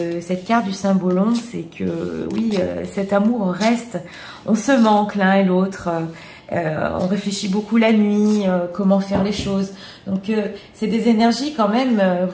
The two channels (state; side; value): identical; both; correlation 1.00